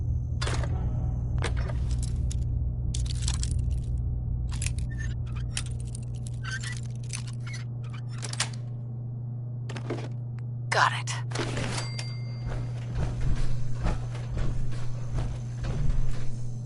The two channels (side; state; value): both; identical; correlation 1.00